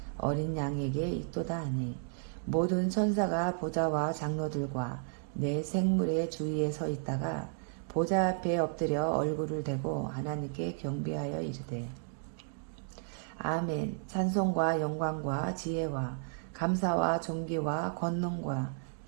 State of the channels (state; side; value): silent; left; digital silence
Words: 어린 양에게 있도다 하니 모든 천사가 보좌와 장로들과 내 생물의 주위에 서 있다가 보좌 앞에 엎드려 얼굴을 대고 하나님께 경배하여 이르되 아멘. 찬송과 영광과 지혜와 감사와 존귀와 권능과